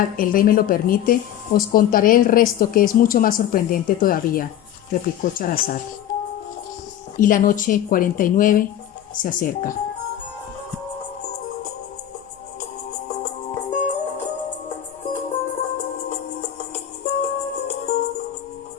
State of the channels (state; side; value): quieter; right; 11.1 dB